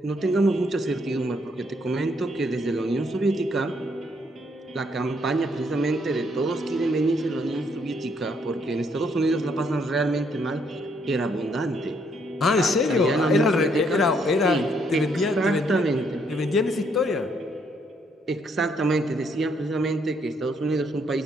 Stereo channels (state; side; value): normal; both; correlation 0.71